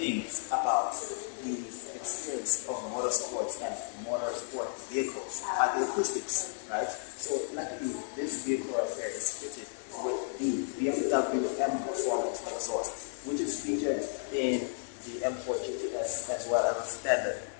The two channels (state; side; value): silent; right; 56 dB below the other